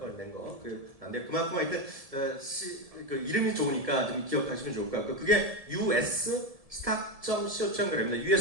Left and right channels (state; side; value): late; left; 1.7 ms